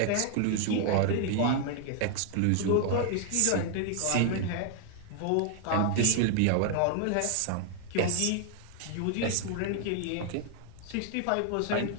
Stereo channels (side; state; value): both; different; correlation 0.00